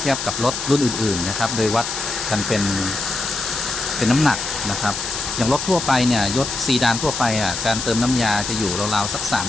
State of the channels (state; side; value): noise; left; hiss, 5 dB below the sound